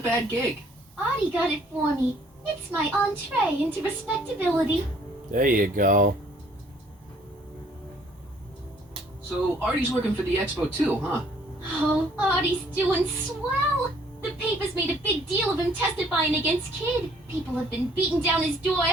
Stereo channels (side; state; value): both; normal; correlation 0.61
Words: gig. Artie got it for me. It's my entree into respectability. There you go. So, Artie's working for the expo too, huh? Oh, Artie's doing swell. The papers made a big deal of him testifying against Kid. People have been beating down his door